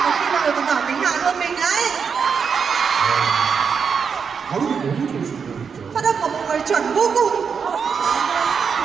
có khi mọi người còn giỏi tiếng Hàn hơn mình đấy. 발음이 너무 좋으시고 진짜. Phát âm của mọi người chuẩn vô cùng.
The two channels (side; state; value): left; quieter; 6.2 dB